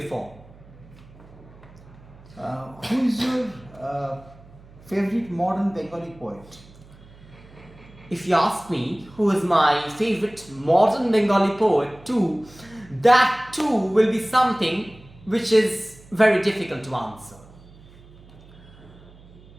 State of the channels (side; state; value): right; noise; hum, 23 dB below the sound